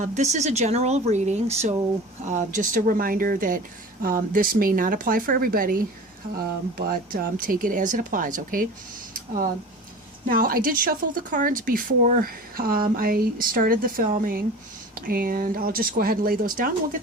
This is a general reading, so just a reminder that this may not apply for everybody, but take it as it applies, okay? Now, I did shuffle the cards before I started the filming, and I'll just go ahead and lay those down and we'll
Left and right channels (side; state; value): both; normal; correlation 0.37